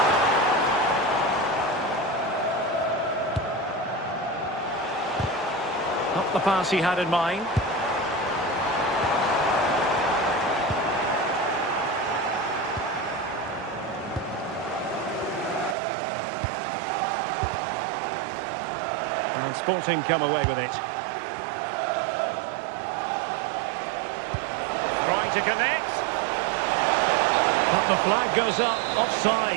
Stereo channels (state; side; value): drops out; left; at 15.8 s